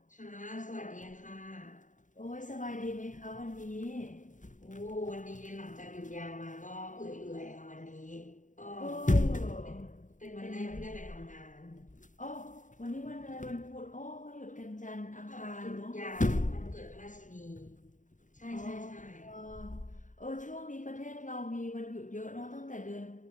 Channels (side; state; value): right; late; 0.37 ms